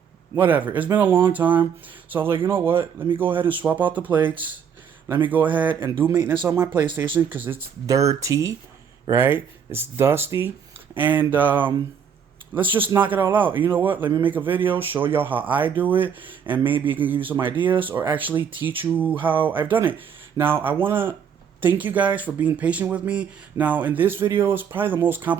whatever. It's been a long time. So I was like, you know what? Let me go ahead and swap out the plates. Let me go ahead and do maintenance on my PlayStation because it's dirty, right? It's dusty. And let's just knock it all out. And you know what? Let me make a video, show y'all how I do it, and maybe it can give you some ideas or actually teach you how I've done it. Now, I want to thank you guys for being patient with me. Now, in this video, it's probably the most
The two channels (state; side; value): quieter; left; 7.4 dB